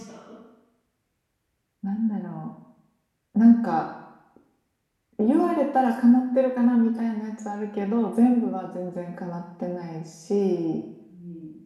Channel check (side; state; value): both; identical; correlation 1.00